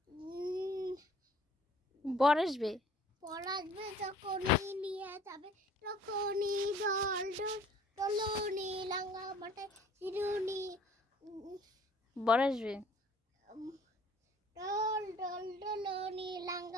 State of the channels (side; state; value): both; normal; correlation 0.54